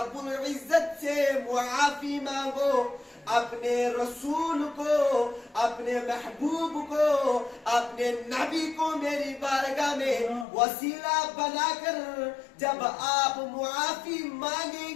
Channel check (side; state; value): right; drops out; at 10.5 s